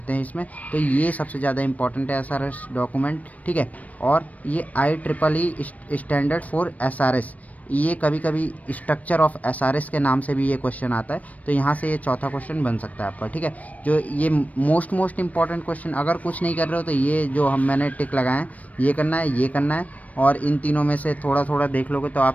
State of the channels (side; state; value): right; late; 0.070 ms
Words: हैं इसमें, तो ये सबसे ज़्यादा इंपॉर्टेंट है SRS डॉक्यूमेंट। ठीक है, और ये IEEE स्टैंडर्ड फॉर SRS, ये कभी कभी स्ट्रक्चर ऑफ SRS के नाम से भी ये क्वेश्चन आता है, तो यहाँ से ये चौथा क्वेश्चन बन सकता है आपका। ठीक है, जो ये मोस्ट इंपॉर्टेंट क्वेश्चन, अगर कुछ नहीं कर रहे हो तो ये जो मैंने टिक लगाए हैं ये करना है, ये करना है, और इन तीनों में से थोड़ा थोड़ा देख लोगे तो